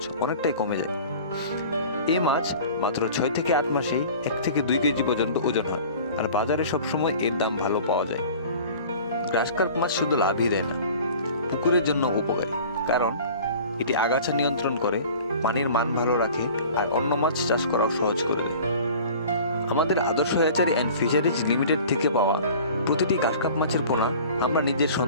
অনেকটাই কমে যায়। এই মাছ মাত্র 6 থেকে 8 মাসেই 1 থেকে 2 কেজি পর্যন্ত ওজন হয়, আর বাজারে সবসময় এর দাম ভালো পাওয়া যায়। ঘাসকার্প মাছ শুধু লাভই দেয় না, পুকুরের জন্য উপকারী। কারণ এটি আগাছা নিয়ন্ত্রণ করে, পানির মান ভালো রাখে, আর অন্য মাছ চাষ করাও সহজ করে দেয়। আমাদের আদর্শ হ্যাচারি অ্যান্ড ফিশারিজ লিমিটেড থেকে পাওয়া প্রতিটি ঘাসকার্প মাছের পোনা আমরা নিজের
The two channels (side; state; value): both; inverted; correlation -0.43